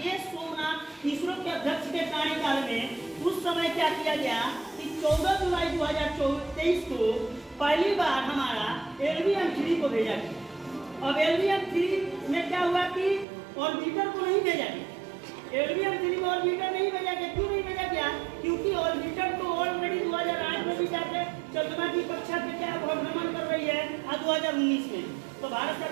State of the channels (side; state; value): left; drops out; at 13.2 s